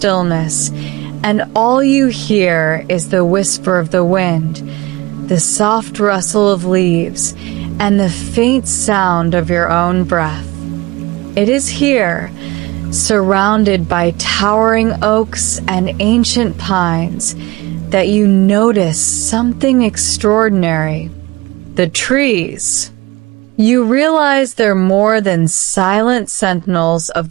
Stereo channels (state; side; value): quieter; left; 21.5 dB